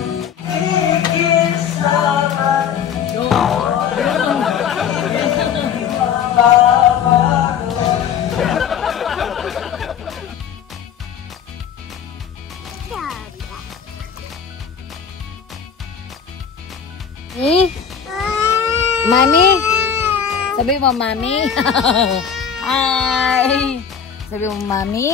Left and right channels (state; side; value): quieter; right; 7.6 dB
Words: Mami? Sabi mo, Mami? Hi! Sabi mo,